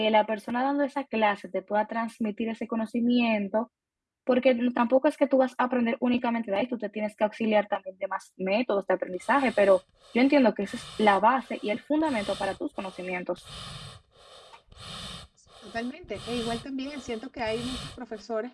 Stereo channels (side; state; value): both; identical; correlation 1.00